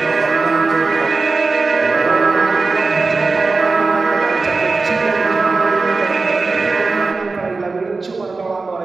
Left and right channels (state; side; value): quieter; left; 3.8 dB